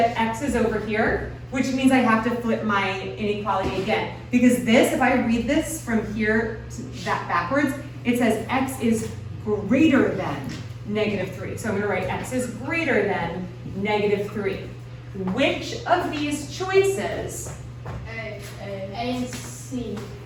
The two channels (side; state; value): both; identical; correlation 1.00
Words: x is over here, which means I have to flip my inequality again. Because this, if I read this from here to that backwards, it says x is greater than negative 3. So I'm going to write x is greater than negative 3. Which of these choices? A and C.